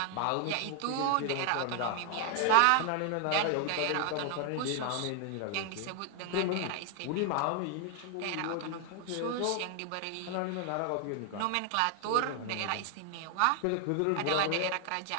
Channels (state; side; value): different; both; correlation 0.00